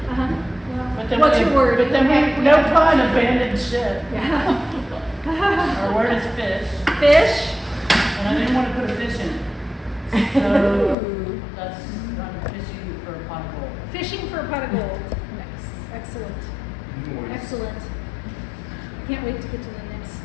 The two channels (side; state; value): right; drops out; at 11.0 s